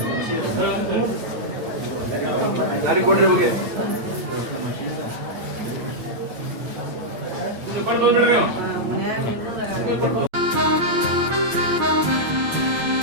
ದಾರಿ ಕೊಡ್ರಿ ಹೋಗಿ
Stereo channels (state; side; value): late; left; 8.9 ms